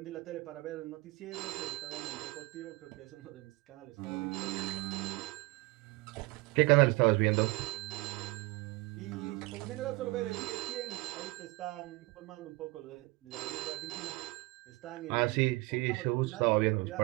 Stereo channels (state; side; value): quieter; left; 23.2 dB